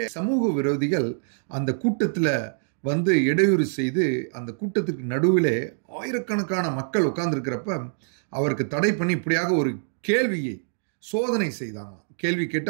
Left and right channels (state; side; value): silent; left; digital silence